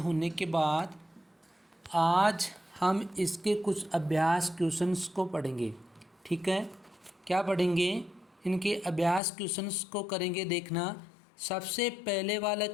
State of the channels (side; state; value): right; drops out; at 9.2 s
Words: के बाद आज हम इसके कुछ अभ्यास क्वेश्चंस को पढ़ेंगे। ठीक है, क्या पढ़ेंगे? इनके अभ्यास क्वेश्चंस को करेंगे। देखना, सबसे पहले वाला